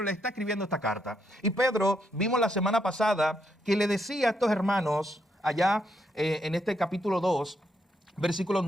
le está escribiendo esta carta. Y Pedro, vimos la semana pasada, que le decía a estos hermanos, allá en este capítulo 2, versículos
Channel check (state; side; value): normal; both; correlation 0.78